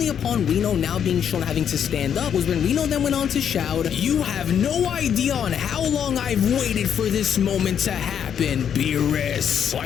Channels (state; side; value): quieter; right; 8.5 dB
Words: upon Reno now being shown having to stand up was when Reno then went on to shout, "You have no idea on how long I've waited for this moment to happen, Beerus.